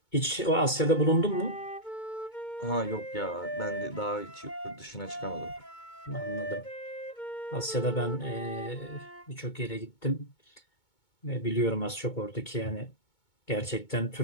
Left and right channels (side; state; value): right; late; 2.2 ms